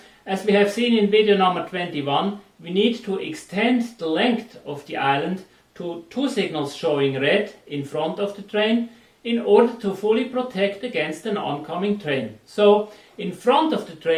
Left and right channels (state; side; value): identical; both; correlation 1.00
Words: as we have seen in video number 21, we need to extend the length of the island to 2 signals showing red in front of the train in order to fully protect against an oncoming train. So, in front of the